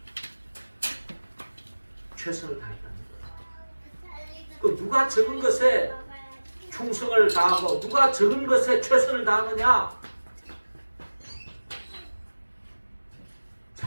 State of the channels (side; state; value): both; inverted; correlation -1.00